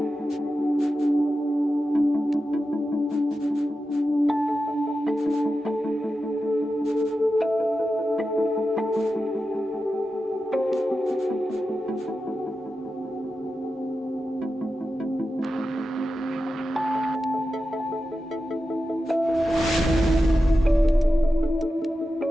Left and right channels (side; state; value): both; normal; correlation 0.91